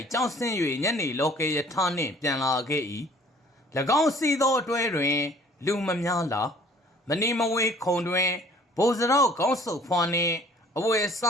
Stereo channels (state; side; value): normal; both; correlation 0.54